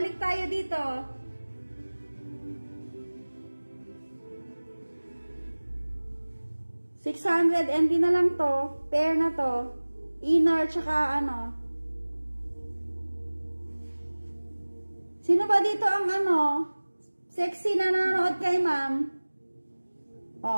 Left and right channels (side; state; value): both; inverted; correlation -1.00